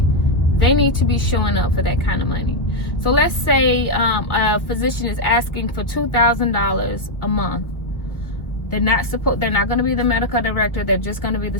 They need to be showing up for that kind of money. So let's say a physician is asking for $2,000 a month. They're not going to be the medical director. They're just going to be the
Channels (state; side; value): late; right; 1.3 ms